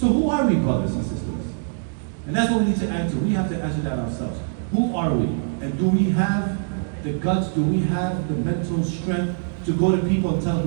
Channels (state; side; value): silent; left; 63 dB below the other